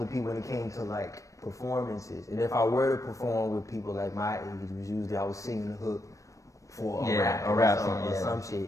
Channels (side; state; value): right; late; 0.16 ms